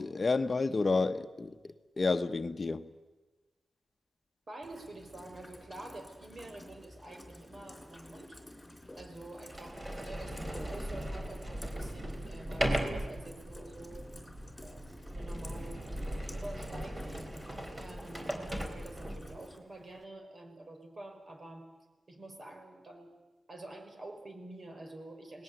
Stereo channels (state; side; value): normal; both; correlation 0.95